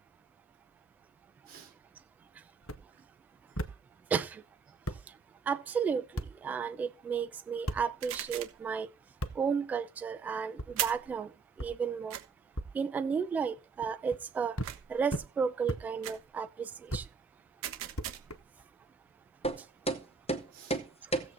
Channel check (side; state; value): left; quieter; 5.1 dB